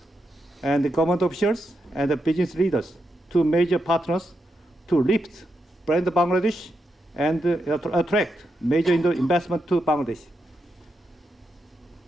and the government officials and the business leaders to major partners to lift brand Bangladesh and attract major investment to Bangladesh.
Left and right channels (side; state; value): both; normal; correlation 0.84